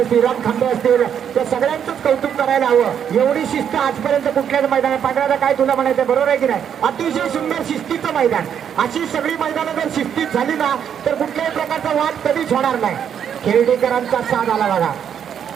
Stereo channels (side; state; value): left; quieter; 8.5 dB